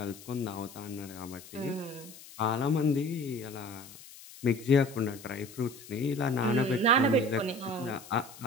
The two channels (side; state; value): left; noise; hiss, 18 dB below the sound